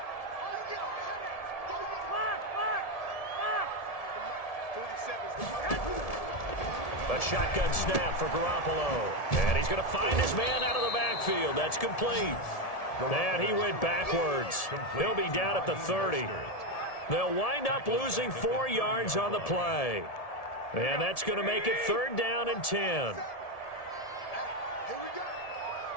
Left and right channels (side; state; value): right; late; 1.7 ms